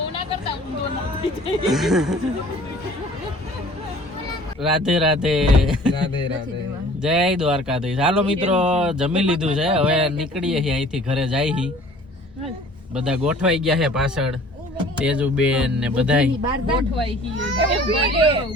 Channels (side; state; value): both; normal; correlation 0.50